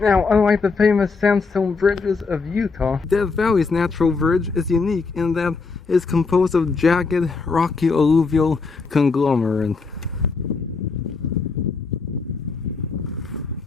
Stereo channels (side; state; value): right; quieter; 4.5 dB